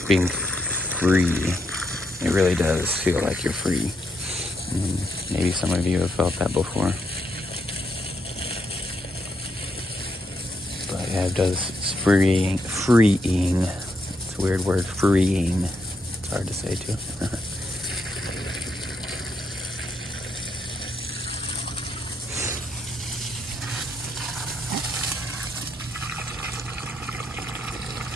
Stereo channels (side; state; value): both; normal; correlation 0.79